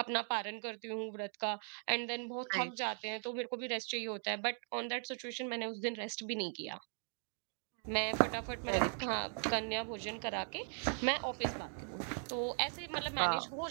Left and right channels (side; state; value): left; silent; 52 dB below the other